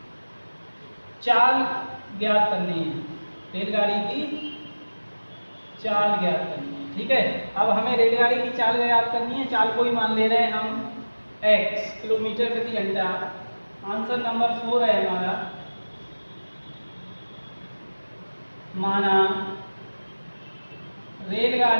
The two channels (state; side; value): inverted; both; correlation -1.00